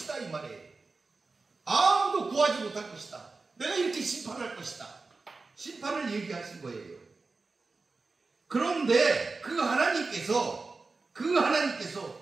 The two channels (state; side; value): quieter; left; 3.9 dB